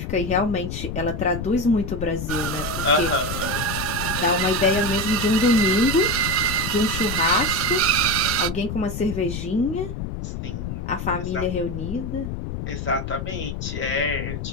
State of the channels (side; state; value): left; noise; rumble, 5 dB below the sound